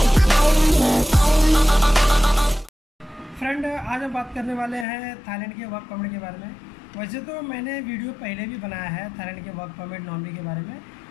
Friend, आज हम बात करने वाले हैं थाईलैंड के वर्क परमिट के बारे में। वैसे तो मैंने वीडियो पहले भी बनाया है थाईलैंड के वर्क परमिट नॉन-वी के बारे में,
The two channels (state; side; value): drops out; right; at 4.9 s